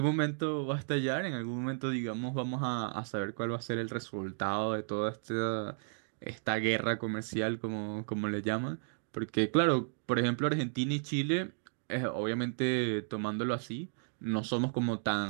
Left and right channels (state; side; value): silent; left; digital silence